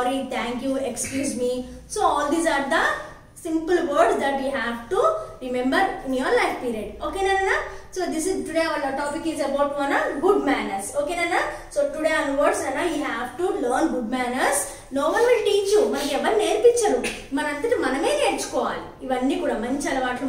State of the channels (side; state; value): both; identical; correlation 1.00